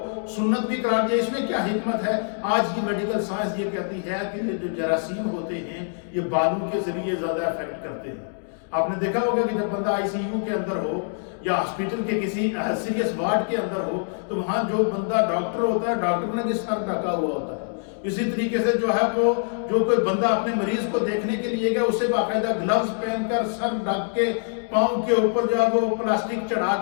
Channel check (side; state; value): right; silent; digital silence